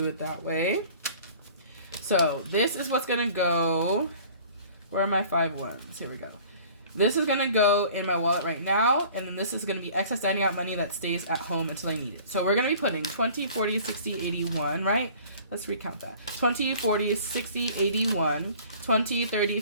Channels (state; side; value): inverted; both; correlation -0.49